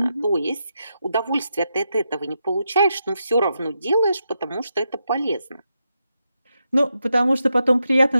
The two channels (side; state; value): both; inverted; correlation -0.85